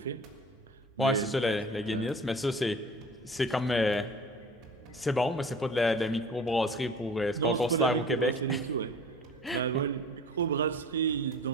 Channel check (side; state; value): both; normal; correlation 0.42